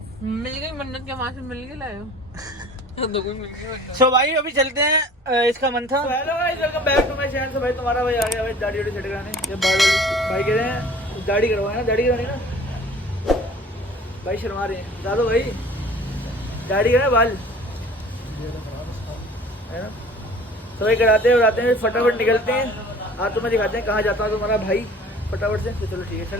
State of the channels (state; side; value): normal; both; correlation 0.47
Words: मिल गई मन्नत के, वहां से मिल के लाए हो। सो भाई अभी चलते हैं, इसका मन था। Hello guys, welcome back to my channel. भाई तुम्हारा भाई आ गया भाई दाढ़ी वाड़ी सेट कराने। ये भाई कह रहे हैं दाढ़ी करवाए ना, दाढ़ी करवानी ना भाई, शर्मा रहे हैं बता दो भाई, दाढ़ी करना बाल है ना। तो भाई कराते हैं फटाफट निकलते हैं। आज तुम्हें दिखाते हैं कहाँ जाता है तुम्हारा भाई फटाफट से। तो चलो ठीक है,